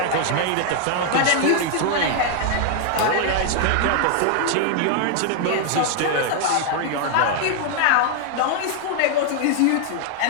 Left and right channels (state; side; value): different; both; correlation 0.00